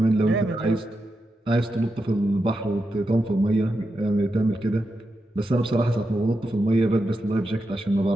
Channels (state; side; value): normal; both; correlation 0.87